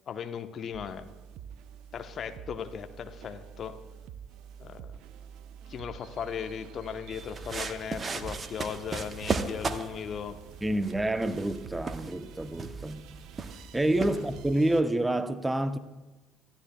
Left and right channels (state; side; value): normal; both; correlation 0.86